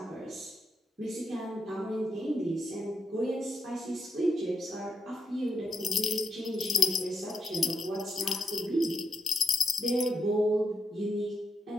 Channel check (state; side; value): normal; both; correlation 0.83